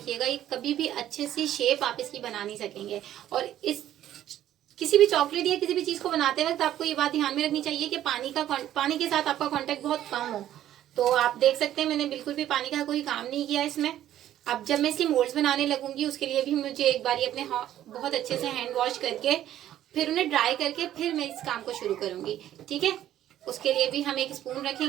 ये कभी भी अच्छे से शेप आप इसकी बना नहीं सकेंगे। और इस किसी भी चॉकलेट या किसी भी चीज को बनाते वक्त आपको ये बात ध्यान में रखनी चाहिए कि पानी के साथ आपका कांटेक्ट बहुत कम हो। तो आप देख सकते हैं मैंने बिल्कुल भी पानी का कोई काम नहीं किया इसमें। अब जब मैं इसके मोल्ड्स बनाने लगूंगी उसके लिए भी मुझे एक बार अपने बहुत अच्छे से हैंड वॉश करके फिर उन्हें ड्राई करके फिर मैं इस काम को शुरू करूंगी। ठीक है, उसके लिए भी हम एक स्पून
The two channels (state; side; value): quieter; left; 12.1 dB